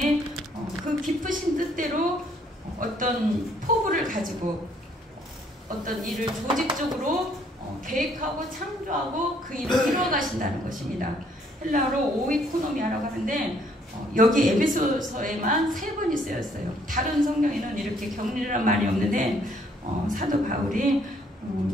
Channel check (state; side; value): normal; both; correlation 0.65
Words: 그 깊으신 뜻대로 어떤 포부를 가지고 어떤 일을 조직적으로 계획하고 창조하고 그 일을 이루어가신다는 것입니다. 헬라어로 오이코노미아라고 하는데 여기 에베소서에만 3번이 쓰였어요. 다른 성경에는 이렇게 격리란 말이 없는데 사도 바울이